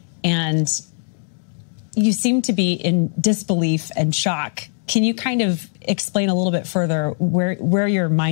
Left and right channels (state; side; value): silent; right; digital silence